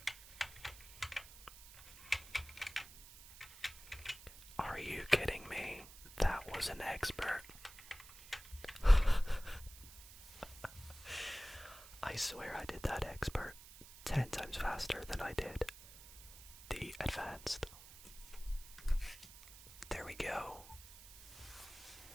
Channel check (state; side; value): noise; right; hiss, 17 dB below the sound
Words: Are you kidding me? That was an expert. I swear I did that expert 10 times faster than I did the advanced. There we go.